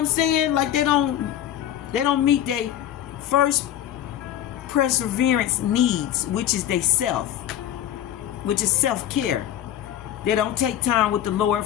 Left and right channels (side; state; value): right; quieter; 11.4 dB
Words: saying? Like, they don't meet their first perseverance needs, which is they self, which is self-care. They don't take time with the Lord,